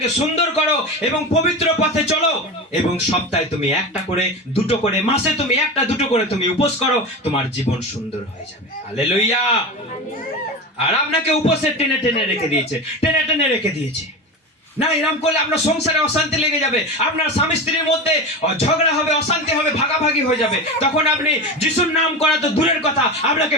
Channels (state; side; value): normal; both; correlation 0.25